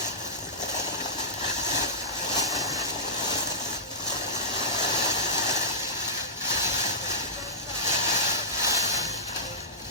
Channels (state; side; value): normal; both; correlation -0.17